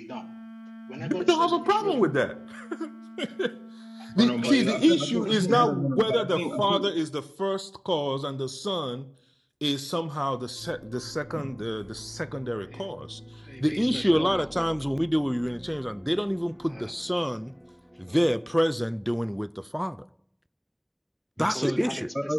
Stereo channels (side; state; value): both; identical; correlation 1.00